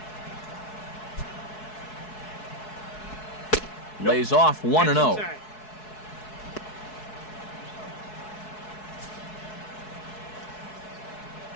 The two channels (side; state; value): right; late; 4.7 ms